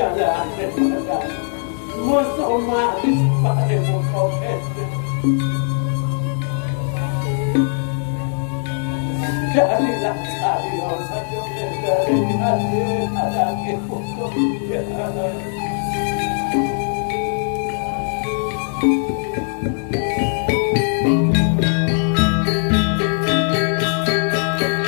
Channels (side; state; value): right; silent; 59 dB below the other